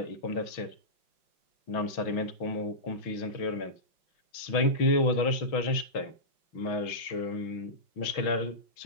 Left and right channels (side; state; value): right; late; 6.1 ms